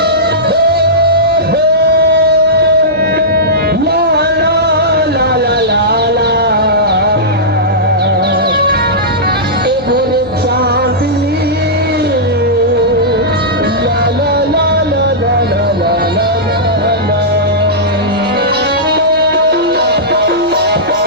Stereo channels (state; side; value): noise; left; hum, 22 dB below the sound